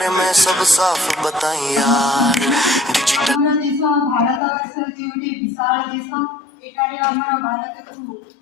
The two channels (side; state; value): right; drops out; at 4.4 s